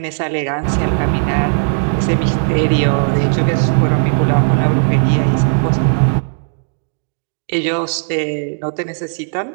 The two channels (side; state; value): left; silent; digital silence